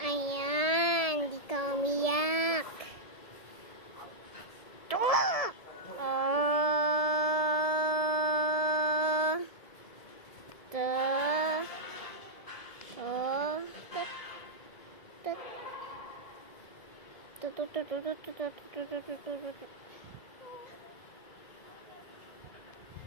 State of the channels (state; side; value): late; right; 1.7 ms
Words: Ayan, di ka umiyak.